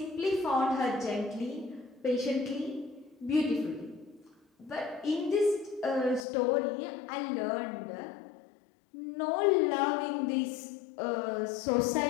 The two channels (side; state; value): right; drops out; at 6.2 s